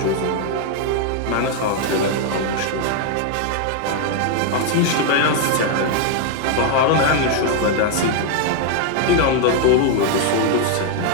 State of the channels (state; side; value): different; both; correlation 0.00